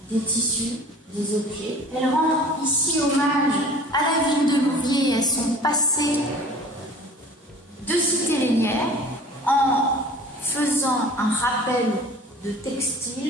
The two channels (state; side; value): normal; both; correlation 0.45